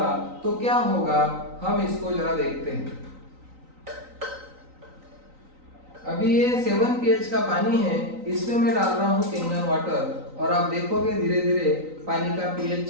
तो क्या होगा, हम इसको जरा देखते हैं। अभी ये 7 pH का पानी है, इसमें मैं डाल रहा हूँ कैंगन वाटर और आप देखोगे धीरे धीरे पानी का पीएच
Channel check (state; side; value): late; left; 3.9 ms